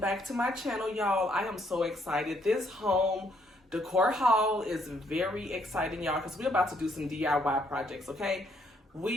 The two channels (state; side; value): normal; both; correlation 0.70